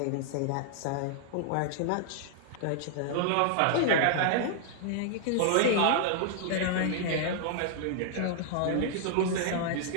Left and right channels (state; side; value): different; both; correlation -0.01